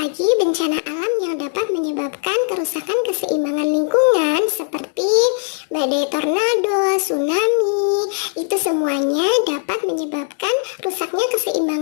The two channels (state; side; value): silent; right; 65 dB below the other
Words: bencana alam yang dapat menyebabkan kerusakan keseimbangan lingkungan seperti badai tornado, tsunami. Itu semuanya dapat menyebabkan rusaknya